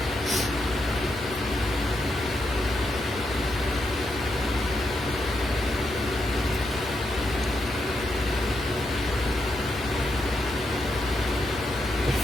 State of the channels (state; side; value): noise; left; hum, 17 dB below the sound